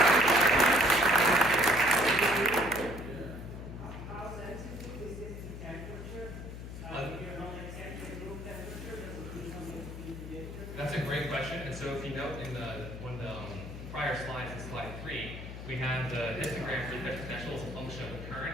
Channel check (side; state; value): left; noise; hum, 10 dB below the sound